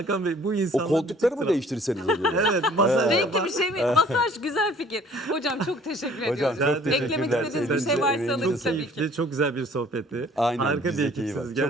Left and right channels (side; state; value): both; normal; correlation 0.54